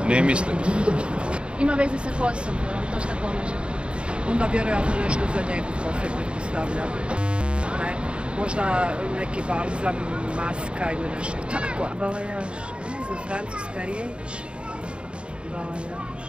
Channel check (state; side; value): late; left; 0.055 ms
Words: Ne mislim. Ima veze sa kosom, to šta pomaže. Onda vjerojatno nešto za njegu kose pretpostavljam. Ne, možda neki balzam, maska ili nešto tako. Balajaž, ne znam, francuska riječ. Balajaž,